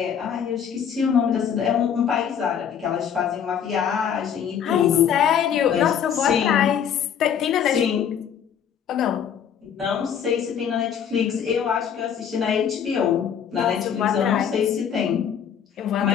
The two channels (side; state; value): right; quieter; 8.3 dB